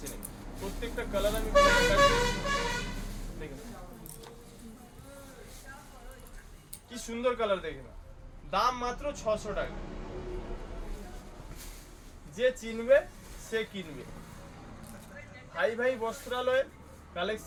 নেবে। প্রত্যেকটা কালার আমি দেখেন কি সুন্দর কালার, দেখে না। দাম মাত্র 600 টাকা। যে চিনবে সে কিনবে। ভাই ভাই বস্ত্রালয়ের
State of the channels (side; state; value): both; identical; correlation 1.00